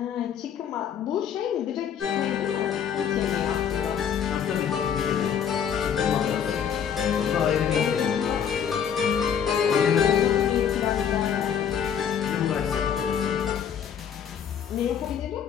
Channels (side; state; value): right; quieter; 8.1 dB